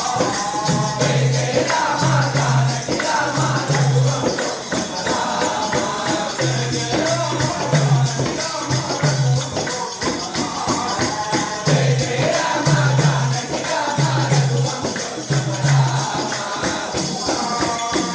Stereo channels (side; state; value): both; identical; correlation 1.00